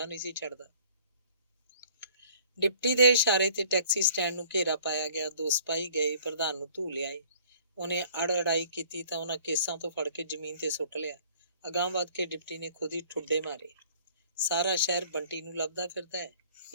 ਨਹੀਂ ਸੀ ਛੱਡਦਾ। ਡਿਪਟੀ ਦੇ ਇਸ਼ਾਰੇ ਤੇ ਟੈਕਸੀ ਸਟੈਂਡ ਨੂੰ ਘੇਰਾ ਪਾਇਆ ਗਿਆ। 2 ਸਿਪਾਹੀ ਗਏ, ਪ੍ਰਧਾਨ ਨੂੰ ਧੂ ਲਿਆਏ। ਉਹਨੇ ਅੜਾਈ ਕੀਤੀ ਤਾਂ ਉਹਨਾਂ ਕੇਸਾਂ ਤੋਂ ਫੜ ਕੇ ਜ਼ਮੀਨ ਤੇ ਸੁੱਟ ਲਿਆ। ਅਗਾਂਹ ਵੱਧ ਕੇ ਡਿਪਟੀ ਨੇ ਖੁਦ ਹੀ ਠੁੱਡੇ ਮਾਰੇ। ਸਾਰਾ ਸ਼ਹਿਰ ਬੰਟੀ ਨੂੰ ਲੱਭਦਾ ਫਿਰਦਾ ਹੈ।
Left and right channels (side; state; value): both; inverted; correlation -0.54